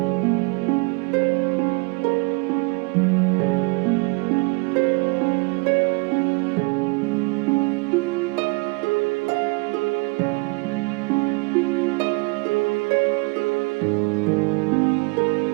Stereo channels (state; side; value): quieter; left; 29.8 dB